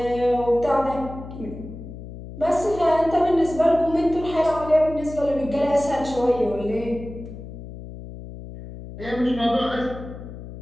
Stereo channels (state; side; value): noise; left; hum, 12 dB below the sound